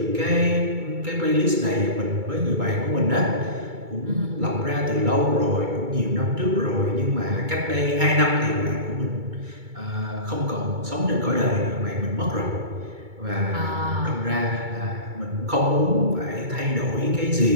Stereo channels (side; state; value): left; late; 2.2 ms